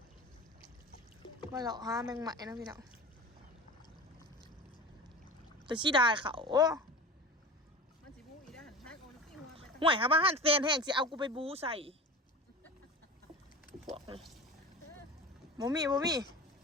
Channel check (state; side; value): normal; both; correlation 0.33